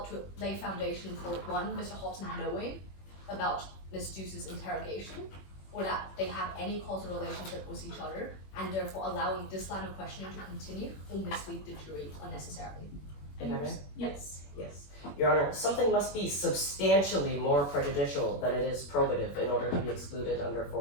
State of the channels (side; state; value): right; late; 21 ms